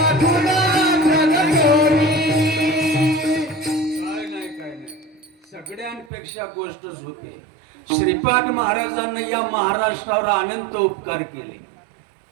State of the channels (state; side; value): drops out; left; at 6.1 s